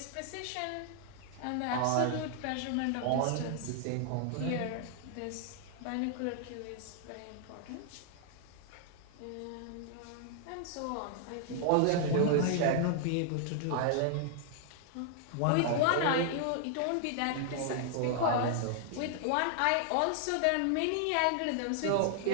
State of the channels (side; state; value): both; different; correlation 0.00